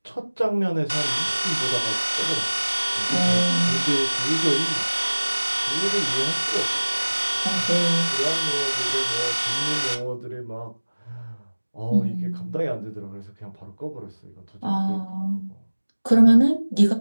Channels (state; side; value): inverted; both; correlation -1.00